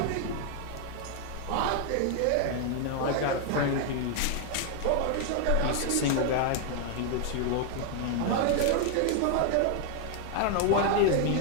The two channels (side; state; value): both; different; correlation 0.00